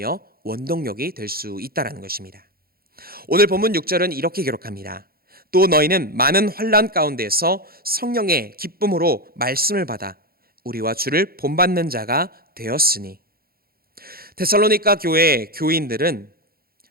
원동력이 될 수 있다는 것입니다. 오늘 본문 6절은 이렇게 기록합니다. 또 너희는 많은 환난 가운데서 성령의 기쁨으로 말씀을 받아 우리와 주를 본받는 자가 되었으니. 데살로니가 교회 교인들은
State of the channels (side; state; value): left; late; 0.44 ms